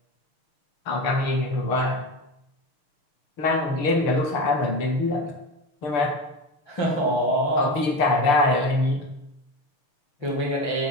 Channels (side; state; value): right; late; 6.5 ms